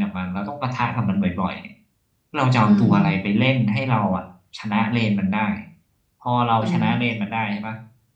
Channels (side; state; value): both; identical; correlation 1.00